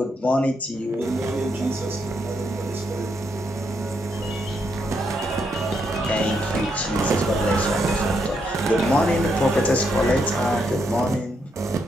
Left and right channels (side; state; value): both; normal; correlation 0.78